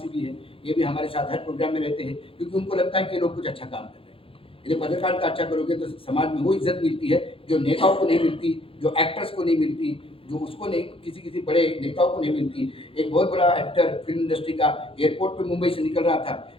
है, ये भी हमारे साथ हर प्रोग्राम में रहते हैं, क्योंकि उनको लगता है कि ये लोग कुछ अच्छा काम कर रहे हैं। यदि पत्रकारिता अच्छा करोगे तो समाज में वो इज्जत मिलती है जो नेताओं को नहीं मिलती, जो एक्टर्स को नहीं मिलती, जो उसको नहीं, किसी किसी बड़े नेताओं को नहीं मिलती। एक बहुत बड़ा एक्टर फिल्म इंडस्ट्री का एयरपोर्ट पे मुंबई से निकल रहा था,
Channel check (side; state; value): right; late; 0.27 ms